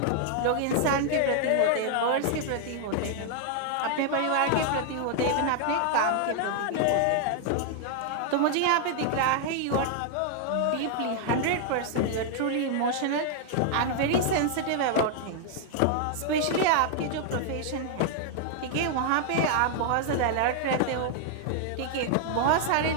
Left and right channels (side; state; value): both; different; correlation 0.00